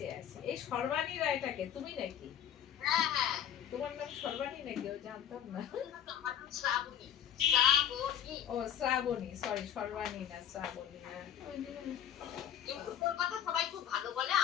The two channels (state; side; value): quieter; right; 9.7 dB